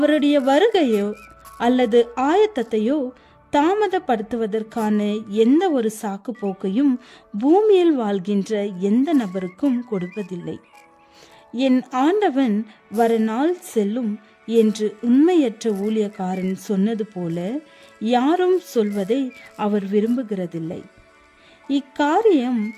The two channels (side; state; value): both; identical; correlation 1.00